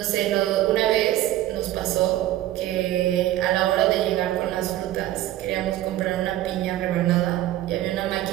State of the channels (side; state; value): left; quieter; 14.2 dB